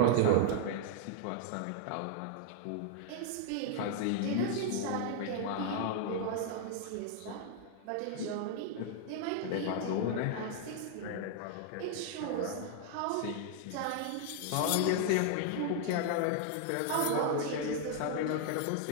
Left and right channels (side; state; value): both; different; correlation 0.00